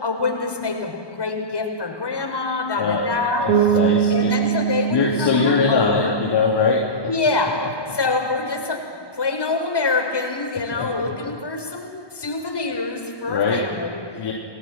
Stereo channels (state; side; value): late; right; 1.2 ms